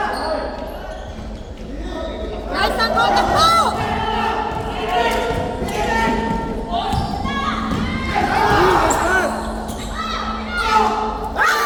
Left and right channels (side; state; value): both; identical; correlation 1.00